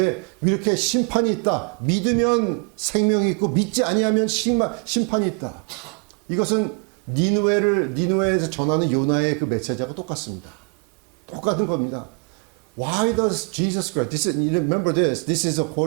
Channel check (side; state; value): left; quieter; 39.0 dB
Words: 이렇게 심판이 있다. 믿으면 생명이 있고 믿지 아니하면 심판이 있다. 이것은 니느웨에서 전하는 요나의 그 메시지하고 똑같습니다. 똑같은 겁니다. Why does Jesus Christ? Remember this. This is